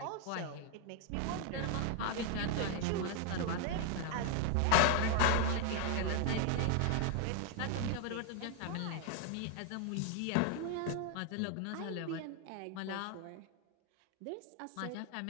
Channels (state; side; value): different; both; correlation 0.00